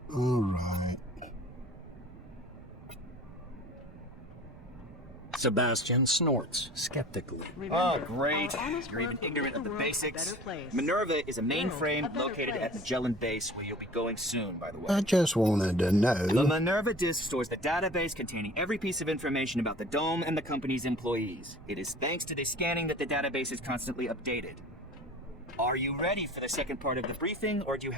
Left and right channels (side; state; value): right; noise; rumble, 20 dB below the sound